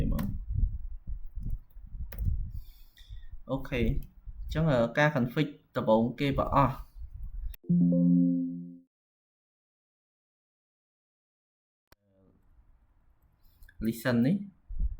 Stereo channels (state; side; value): identical; both; correlation 1.00